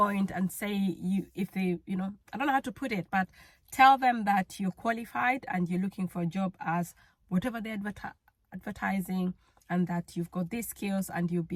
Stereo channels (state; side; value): identical; both; correlation 1.00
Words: and say, if they, you know, I don't know how to put it, but tell them that you're qualified and you're looking for a job as whatever they're advertising, and that you've got these skills and you'll